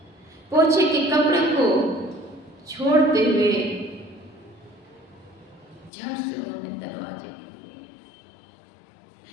पोछे के कपड़े को छोड़ते हुए झट से उन्होंने दरवाजे खोले,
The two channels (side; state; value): right; drops out; at 5.9 s